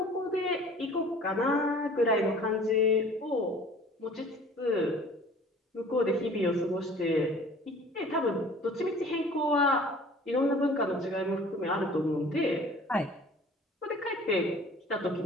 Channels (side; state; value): both; normal; correlation 0.48